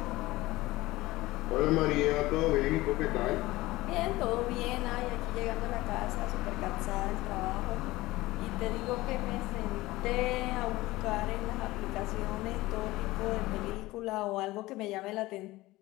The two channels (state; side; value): quieter; right; 18.9 dB